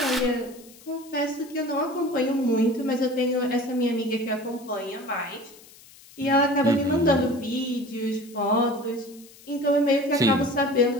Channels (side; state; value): left; noise; hiss, 23 dB below the sound